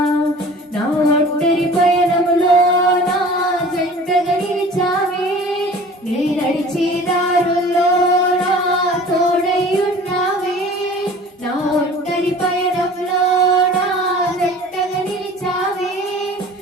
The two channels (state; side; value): normal; both; correlation 0.44